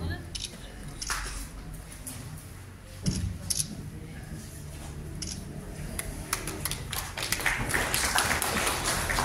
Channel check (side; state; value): both; identical; correlation 1.00